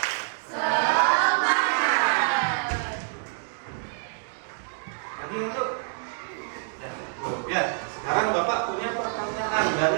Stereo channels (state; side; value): silent; left; digital silence